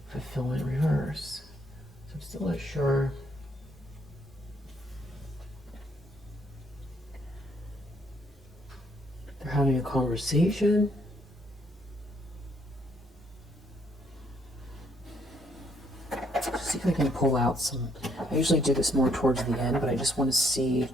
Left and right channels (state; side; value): normal; both; correlation 0.70